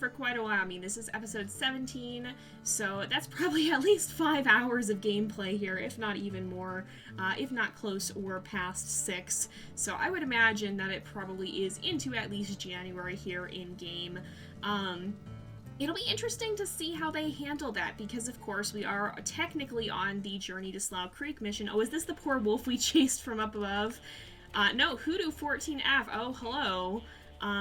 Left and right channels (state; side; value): identical; both; correlation 1.00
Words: quite a while. I mean, this is episode 17, so that's probably at least 5 hours of gameplay here, if not even more, if not close or past 6. So I would imagine that it probably is into at least January here in game. It'll be interesting to see how they handle that, because of course we are technically on the Journey to Slough Creek mission. Oh, is this the poor wolf we chased from up above? No, Hoodoo 14F. Oh, hello.